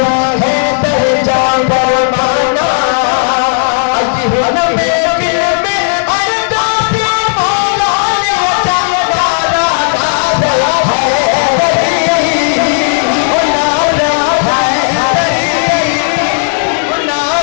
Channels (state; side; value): silent; right; 73 dB below the other